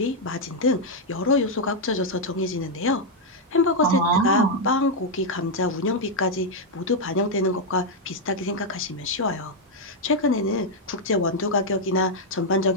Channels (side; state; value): both; normal; correlation -0.01